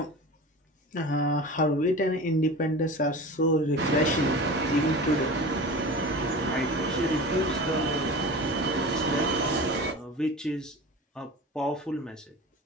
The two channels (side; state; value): both; normal; correlation 0.34